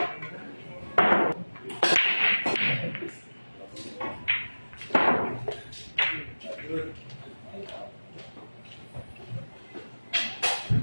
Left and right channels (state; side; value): inverted; both; correlation -1.00